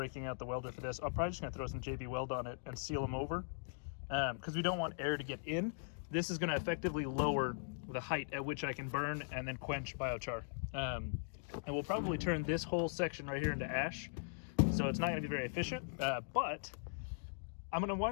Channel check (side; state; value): right; silent; digital silence